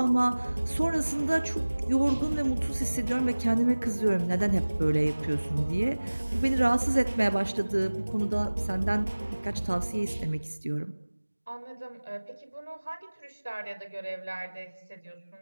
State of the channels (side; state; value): both; inverted; correlation -1.00